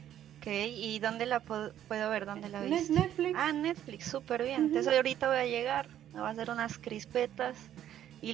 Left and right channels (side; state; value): left; quieter; 11.2 dB